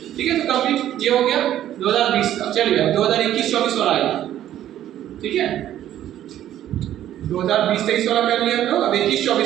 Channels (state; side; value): quieter; left; 12.0 dB